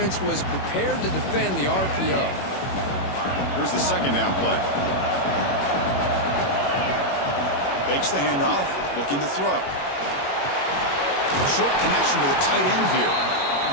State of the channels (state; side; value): late; right; 21 ms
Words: was prepared to defend the RPO. Here's the second down play. Fakes the handoff, looking to throw. Short connection to the tight end here.